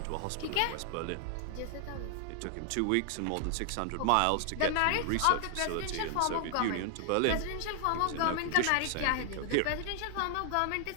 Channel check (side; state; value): both; different; correlation 0.00